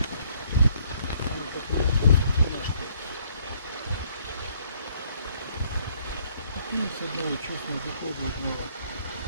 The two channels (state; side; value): inverted; both; correlation -0.65